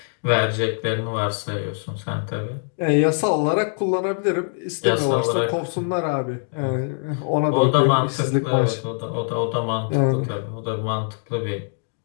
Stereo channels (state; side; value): silent; right; digital silence